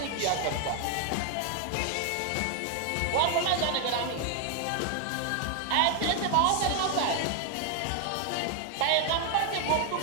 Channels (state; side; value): different; both; correlation 0.00